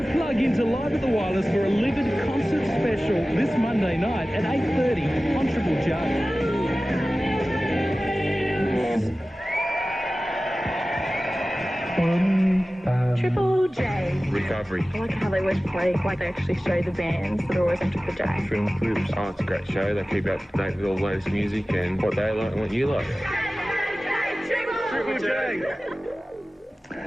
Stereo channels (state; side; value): normal; both; correlation 0.96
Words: plug into Live at the Wireless for a Livid concert special this Monday night at 8:30 on Triple J. Triple J. Recovery. I like how they always play, like they actually show the bands that are always on Triple J. Film clips. Oh, it's a great show. They keep up to date with all the latest music and what they like and what you like. Triple J!